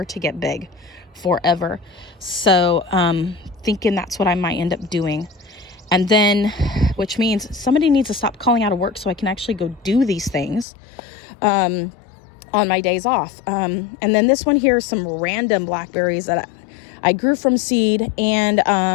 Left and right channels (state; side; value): drops out; right; at 10.7 s